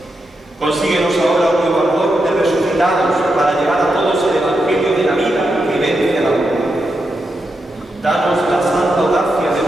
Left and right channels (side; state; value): both; normal; correlation 0.85